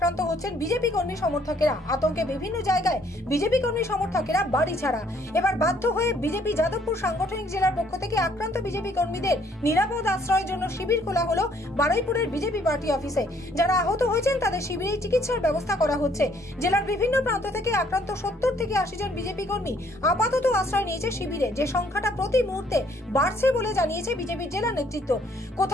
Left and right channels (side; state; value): both; normal; correlation 0.64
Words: হচ্ছেন বিজেপি কর্মী সমর্থকেরা। আতঙ্কে বিভিন্ন জায়গায় বিজেপি কর্মী সমর্থকেরা বাড়ি ছাড়া। এবার বাধ্য হয়ে বিজেপি যাদবপুর সাংগঠনিক জেলার পক্ষ থেকে আক্রান্ত বিজেপি কর্মীদের নিরাপদ আশ্রয়ের জন্য শিবির খোলা হলো বারুইপুরের বিজেপি পার্টি অফিসে। যারা আহত হয়েছেন তাদের শিবিরে চিকিৎসার ব্যবস্থা করা হচ্ছে। জেলার বিভিন্ন প্রান্ত থেকে আক্রান্ত 70 থেকে 80 জন বিজেপি কর্মী আপাতত আশ্রয় নিয়েছে শিবিরে, যে সংখ্যাটা প্রতি মুহূর্তে বাড়ছে বলে জানিয়েছে বিজেপির জেলা নেতৃত্ব।